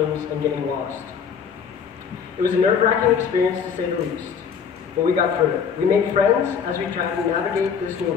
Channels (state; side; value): quieter; right; 6.8 dB